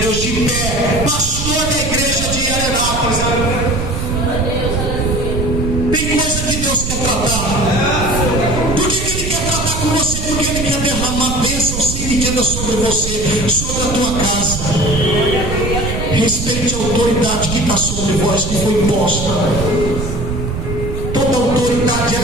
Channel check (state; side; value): noise; right; rumble, 4 dB below the sound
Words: de pé, pastor da igreja de Arenápolis. Tem coisa que Deus quer tratar. Por que Ele quer tratar com você? Porque Ele quer derramar bênção sem medida sobre você, sobre a tua casa. Respeite a autoridade que está sobre vós, que foi imposta. Toda autoridade